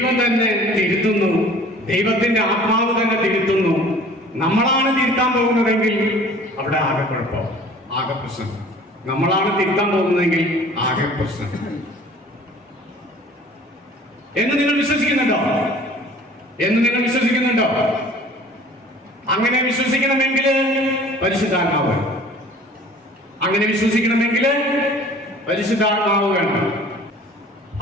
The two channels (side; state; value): both; normal; correlation 0.48